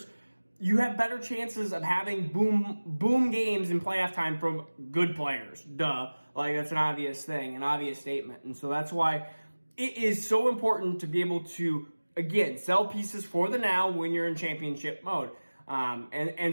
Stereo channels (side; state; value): both; inverted; correlation -1.00